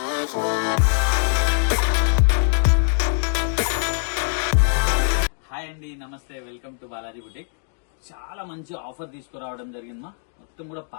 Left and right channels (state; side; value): silent; right; digital silence